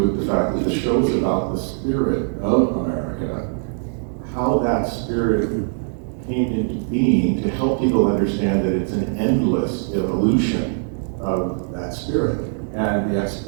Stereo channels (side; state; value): left; silent; digital silence